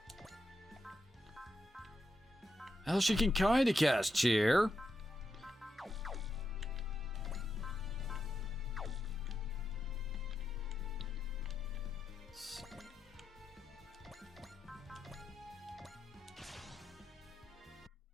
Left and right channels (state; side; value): normal; both; correlation 0.85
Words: Well, she can kinda cast Cheer.